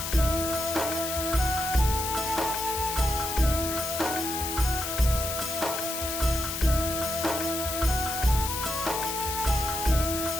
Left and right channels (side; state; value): left; noise; hiss, 4 dB below the sound